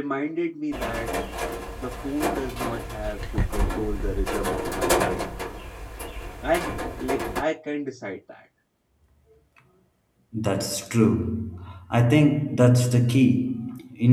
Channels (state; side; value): identical; both; correlation 1.00